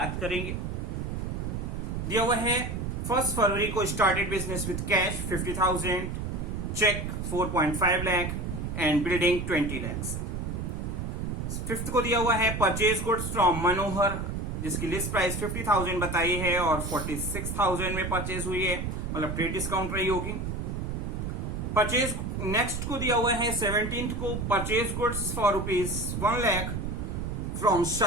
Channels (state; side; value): noise; right; rumble, 4 dB below the sound